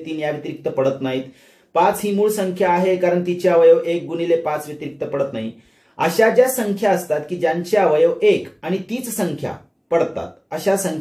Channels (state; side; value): identical; both; correlation 1.00